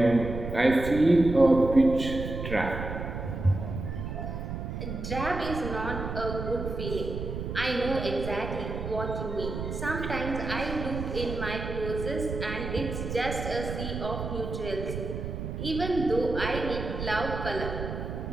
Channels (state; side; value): noise; right; rumble, 5 dB below the sound